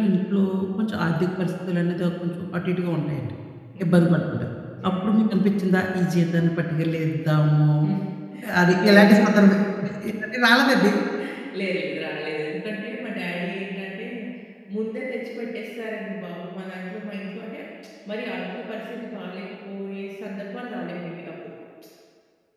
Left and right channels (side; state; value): both; identical; correlation 1.00